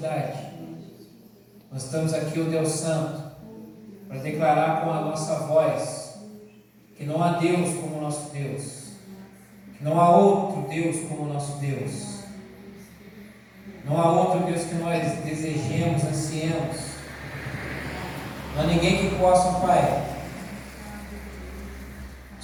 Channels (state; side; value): identical; both; correlation 1.00